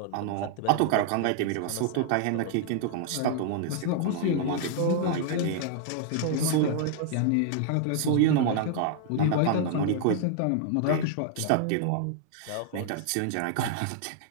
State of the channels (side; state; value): both; different; correlation -0.01